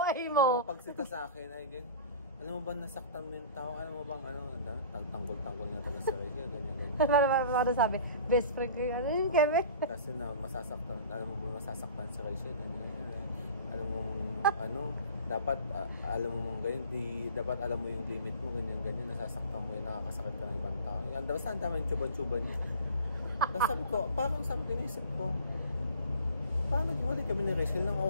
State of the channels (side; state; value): both; inverted; correlation -0.43